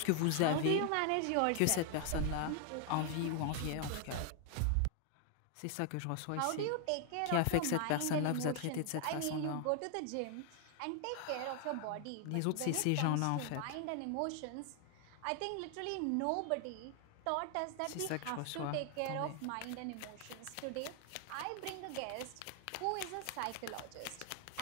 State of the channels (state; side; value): different; both; correlation 0.00